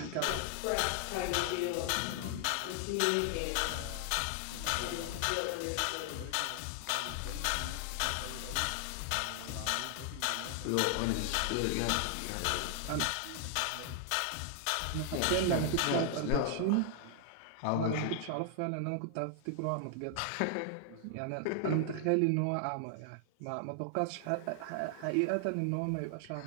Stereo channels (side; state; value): both; different; correlation 0.00